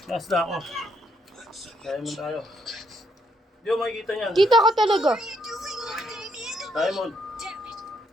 Last na ako. Diamond tayo. Hindi mo makikita niyan. Kita ka talaga. What are you doing, Lord Damien? Diamond. Damn it.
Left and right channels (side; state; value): both; normal; correlation 0.74